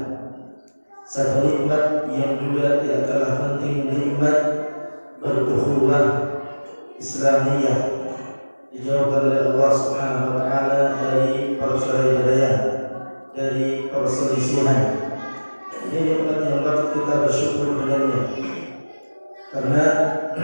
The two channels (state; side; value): inverted; both; correlation -1.00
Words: Satu nikmat yang juga tidak kalah penting, nikmat berukhuwah Islamiyah, dijauhkan oleh Allah Subhanahu wa taala dari perselisihan, dari perselisihan. Ini nikmat yang patut kita bersyukur dengannya, karena